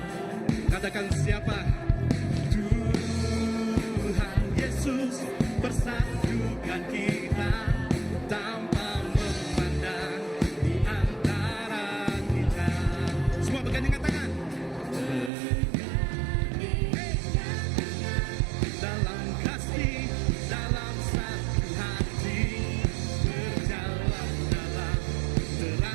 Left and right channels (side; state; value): left; drops out; at 15.3 s